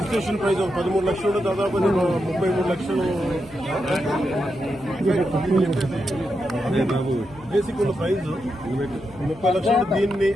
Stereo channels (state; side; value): noise; left; hum, 21 dB below the sound